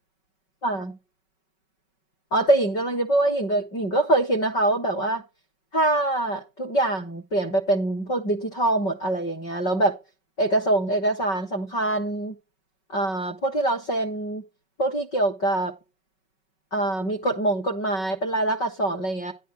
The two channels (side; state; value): right; late; 5.3 ms